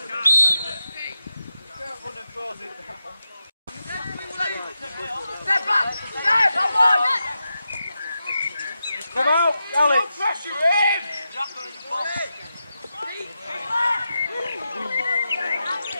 Come out, Alex. Pressure in!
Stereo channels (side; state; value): both; inverted; correlation -0.89